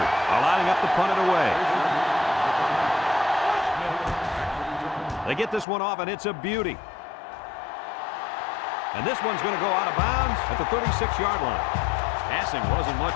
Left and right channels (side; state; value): right; drops out; at 5.7 s